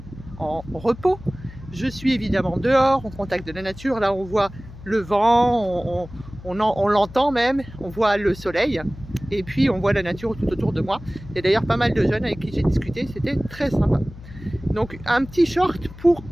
en repos, je suis évidemment dehors, au contact de la nature. Là, on voit le vent, on l'entend même, on voit le soleil. Et puis on voit la nature tout autour de moi. Il y a d'ailleurs pas mal de jeunes avec qui j'ai discuté, c'était très sympa. Donc un petit short,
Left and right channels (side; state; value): left; noise; hum, 16 dB below the sound